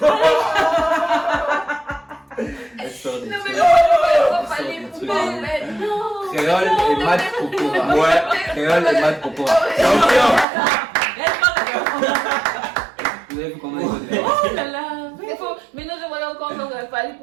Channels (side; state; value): left; drops out; at 10.5 s